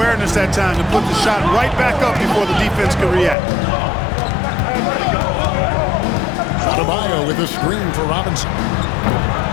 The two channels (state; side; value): drops out; right; at 3.4 s